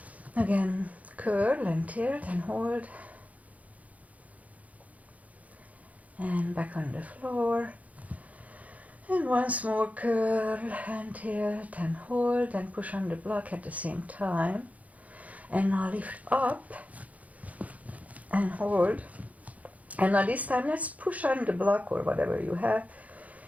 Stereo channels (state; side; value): late; left; 0.071 ms